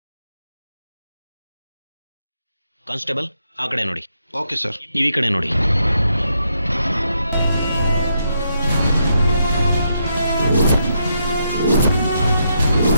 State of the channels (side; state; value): both; inverted; correlation -0.79